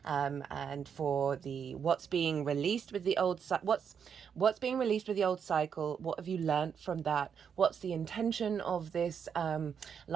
and for the what's being released with the old what's being released with the old cycle. What have you learnt from that? What's the intention of this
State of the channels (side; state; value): left; quieter; 7.2 dB